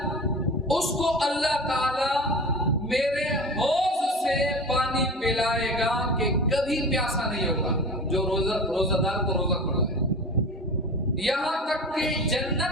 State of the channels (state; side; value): normal; both; correlation 0.34